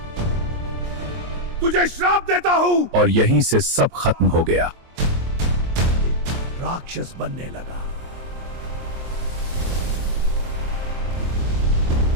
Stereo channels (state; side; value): late; left; 23 ms